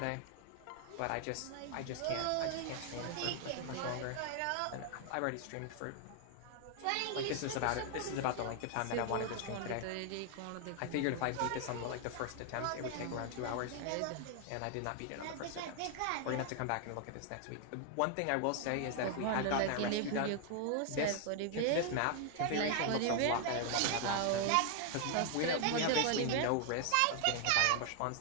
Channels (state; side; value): different; both; correlation 0.00